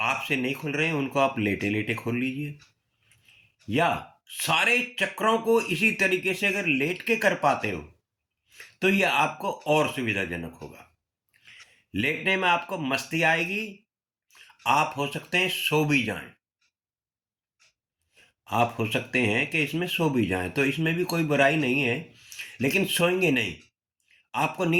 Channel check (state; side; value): identical; both; correlation 1.00